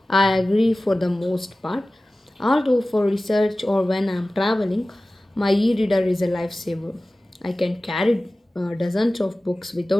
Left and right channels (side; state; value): both; normal; correlation 0.97